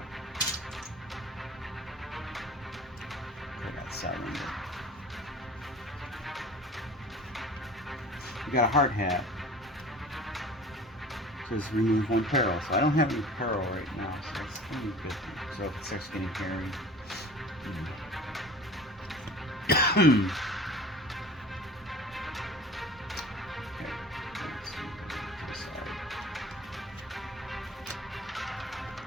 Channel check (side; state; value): both; normal; correlation 0.42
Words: I got 7. We got a hard hat. It says remove 1 peril. So I don't have any peril right now. So that's only a good thing. So if it starts getting hairy.